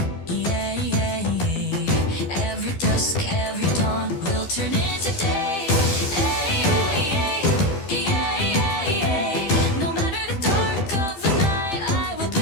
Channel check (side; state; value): right; late; 13 ms